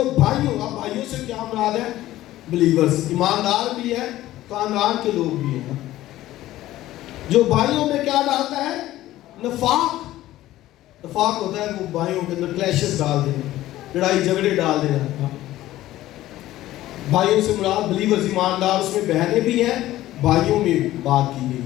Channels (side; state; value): right; quieter; 15.1 dB